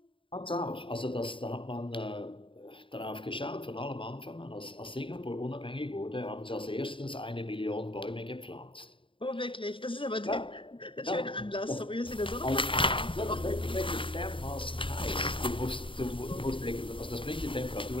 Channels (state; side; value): late; right; 0.25 ms